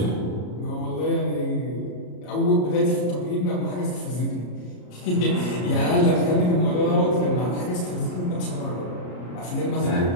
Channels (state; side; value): late; right; 33 ms